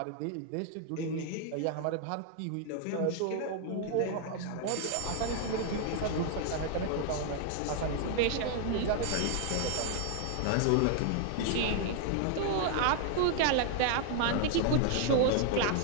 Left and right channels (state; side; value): different; both; correlation 0.00